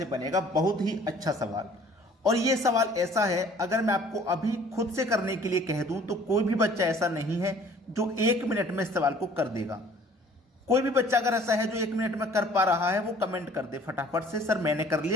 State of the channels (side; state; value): both; normal; correlation 0.53